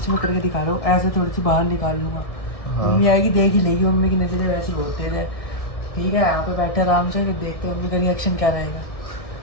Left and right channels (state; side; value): late; right; 1.6 ms